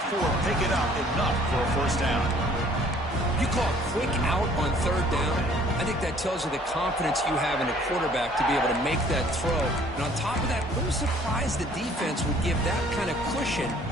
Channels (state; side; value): normal; both; correlation 0.57